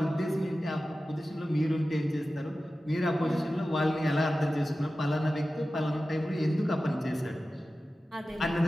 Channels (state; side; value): normal; both; correlation 0.95